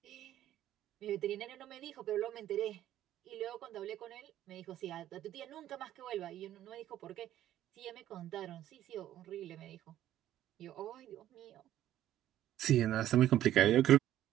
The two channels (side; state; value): left; quieter; 12.6 dB